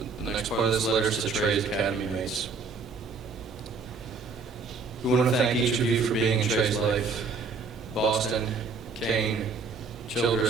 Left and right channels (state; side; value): quieter; left; 4.5 dB